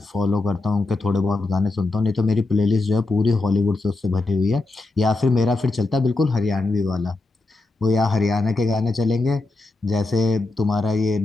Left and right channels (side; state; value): right; quieter; 3.2 dB